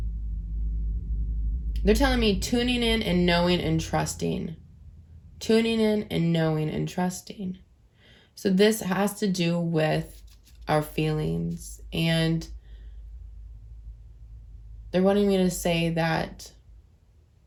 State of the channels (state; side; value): identical; both; correlation 1.00